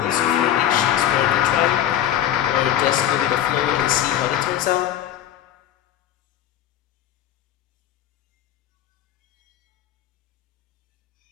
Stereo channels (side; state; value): right; quieter; 11.3 dB